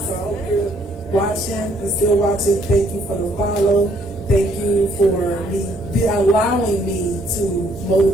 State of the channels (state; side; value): normal; both; correlation 0.66